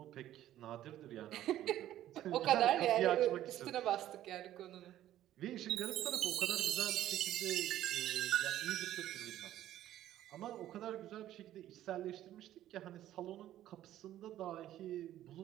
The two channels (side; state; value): left; quieter; 12.9 dB